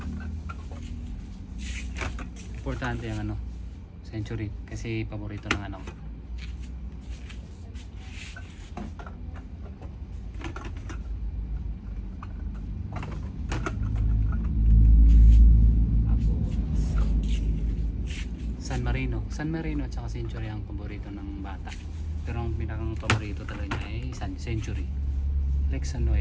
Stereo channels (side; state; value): both; identical; correlation 1.00